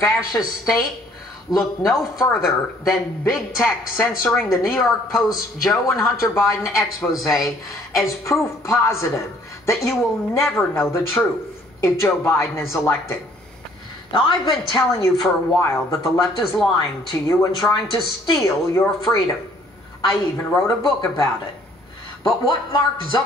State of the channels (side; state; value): both; normal; correlation 0.60